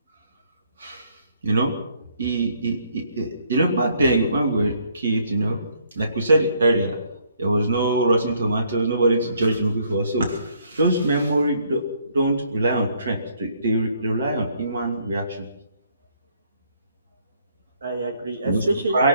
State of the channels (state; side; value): inverted; both; correlation -0.67